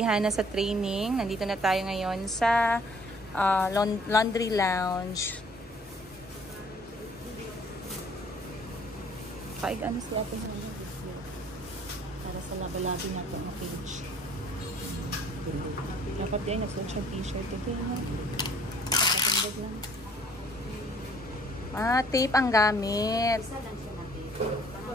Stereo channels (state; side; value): normal; both; correlation 0.58